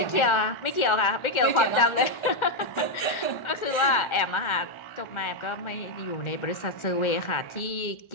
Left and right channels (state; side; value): late; right; 1.4 ms